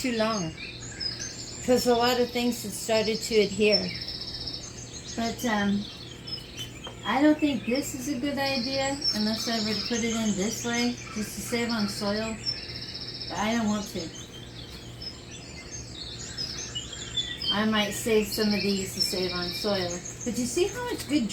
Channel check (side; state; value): both; identical; correlation 1.00